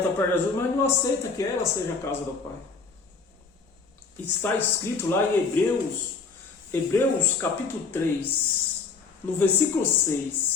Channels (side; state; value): right; quieter; 4.9 dB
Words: para Jesus, mas não aceita que ela seja a casa do Pai. Está escrito lá em Hebreus capítulo 3, no versículo